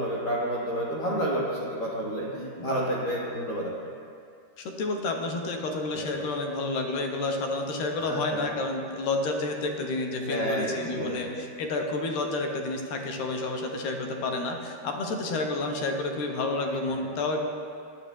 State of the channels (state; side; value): late; right; 13 ms